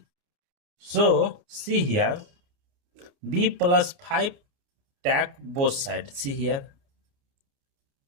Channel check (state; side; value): late; left; 29 ms